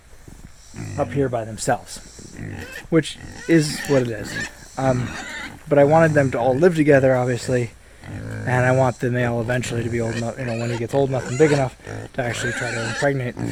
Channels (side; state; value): both; identical; correlation 1.00